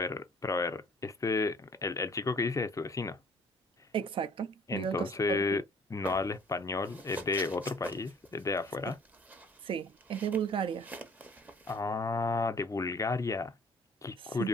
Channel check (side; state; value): both; normal; correlation 0.54